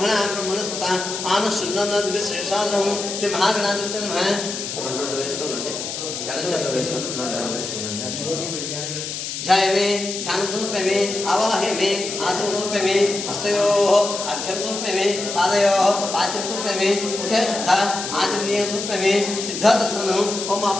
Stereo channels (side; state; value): left; noise; hiss, 6 dB below the sound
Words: आनशुन्नद्विश्रेषालं श्री महागणाधिपते नमः రెండు వేస్తుండండి గణచంద్ర వేసుకుంటే जय मे ध्यान समर्पय मे आवाह्य मे आसन समर्पय मे हस्तयोः अर्घ्यं समर्पय मे पादयोः पाद्यं समर्पय मे मुखे शुद्ध आचमनीयं समर्पय मे शुद्ध दर्शनम् ओम